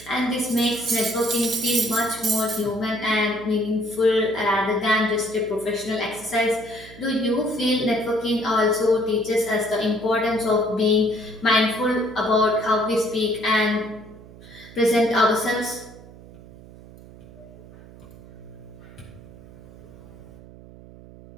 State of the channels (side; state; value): right; noise; hum, 19 dB below the sound